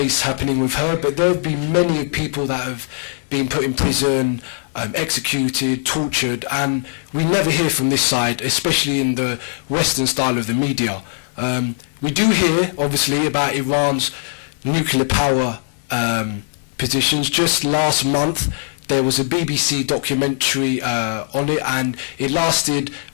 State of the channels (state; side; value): silent; right; 60 dB below the other